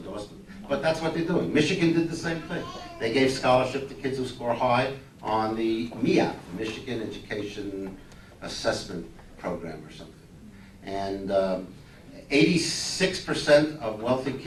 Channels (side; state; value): both; identical; correlation 1.00